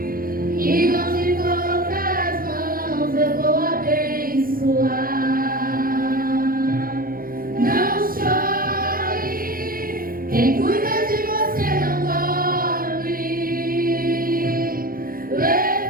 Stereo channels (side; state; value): left; late; 0.42 ms